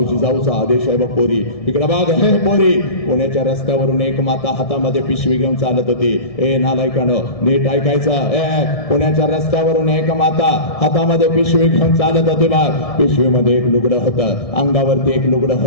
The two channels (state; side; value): late; right; 1.7 ms